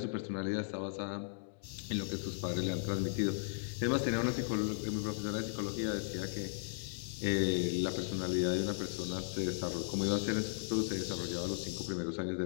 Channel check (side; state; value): right; silent; digital silence